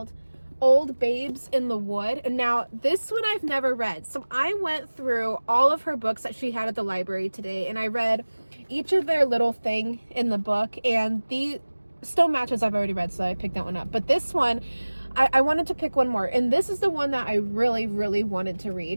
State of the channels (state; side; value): inverted; both; correlation -1.00